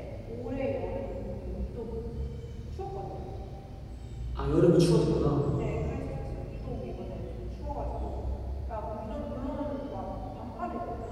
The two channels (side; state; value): both; identical; correlation 1.00